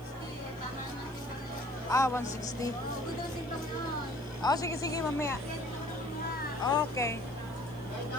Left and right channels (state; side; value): noise; right; hiss, 26 dB below the sound